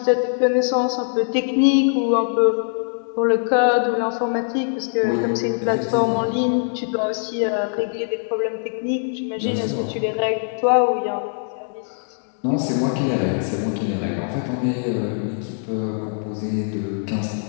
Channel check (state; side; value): silent; right; digital silence